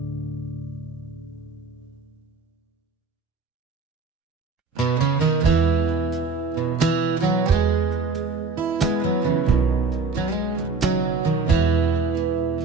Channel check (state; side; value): quieter; left; 4.3 dB